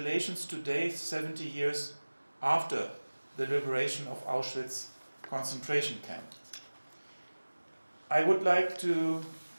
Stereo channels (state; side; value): inverted; both; correlation -1.00